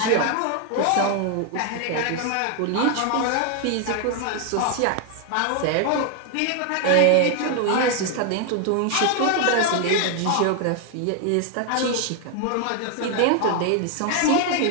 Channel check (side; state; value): both; different; correlation 0.00